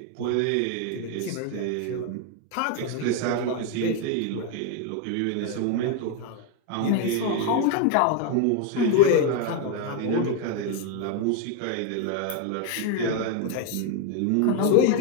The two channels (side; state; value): both; different; correlation 0.01